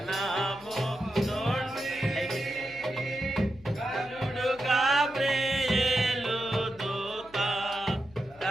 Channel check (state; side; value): noise; left; hum, 24 dB below the sound